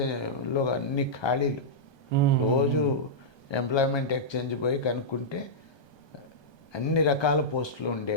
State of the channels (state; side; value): late; right; 1.2 ms